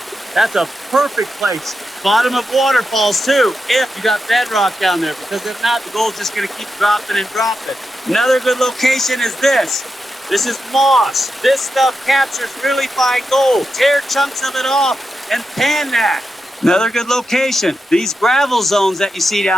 that's a perfect place. Bottom of waterfalls too, if you got bedrock down there, because if not, the gold's just going to keep dropping and dropping. Another good location is this. This is moss. This stuff captures really fine gold. Tear chunks of it off and pan that. Another good location, these gravel zones that you see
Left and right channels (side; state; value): both; normal; correlation 0.88